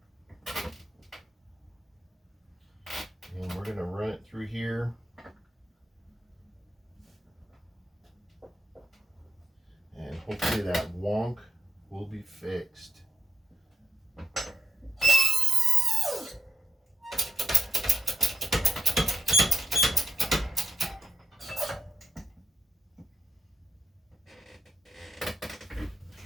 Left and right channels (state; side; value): normal; both; correlation 0.83